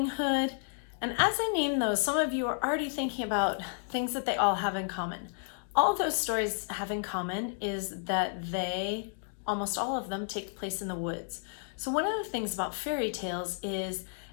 Hood. And as I name those, some of you are already thinking about things that they all have in common. All those stories have in common is that they, almost all of them, take place in the woods. So one of the things about fairy tales is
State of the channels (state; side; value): silent; right; digital silence